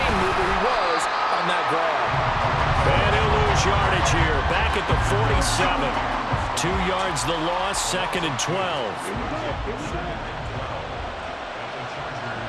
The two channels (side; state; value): both; identical; correlation 1.00